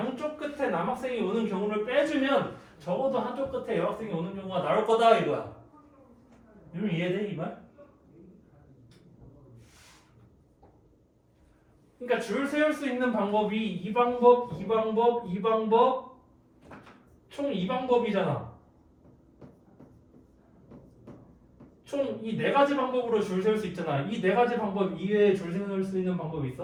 끝에 남학생이 오는 경우를 빼주면 적어도 한쪽 끝에 여학생이 오는 경우가 나올 거다 이거야. 이러면 이해돼 이 말? 그러니까 줄 세울 수 있는 방법이 이 방법, 이 방법, 이 방법 총 2방법이잖아. 총 이 4가지 방법으로 줄 세울 수 있잖아. 이 4가지 방법 이외에 줄 세울 수 있는 방법이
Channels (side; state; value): both; identical; correlation 1.00